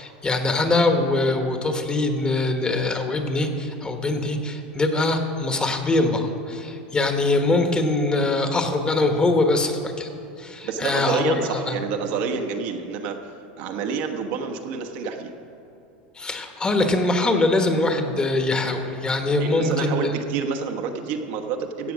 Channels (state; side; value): normal; both; correlation 0.51